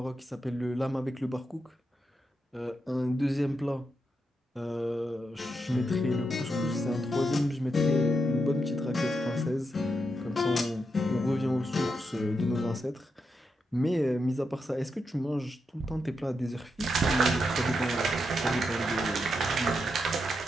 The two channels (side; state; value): both; normal; correlation 0.84